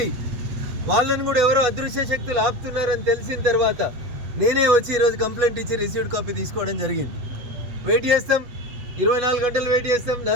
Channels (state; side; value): late; left; 8.2 ms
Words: వాళ్ళని కూడా ఎవరో అదృశ్య శక్తులు ఆపుతున్నారని తెలిసిన తర్వాత నేనే వచ్చి ఈరోజు కంప్లైంట్ ఇచ్చి రిసీవ్డ్ కాపీ తీసుకోవడం జరిగింది. వెయిట్ చేస్తాం, 24 గంటలు వెయిట్ చేస్తాం,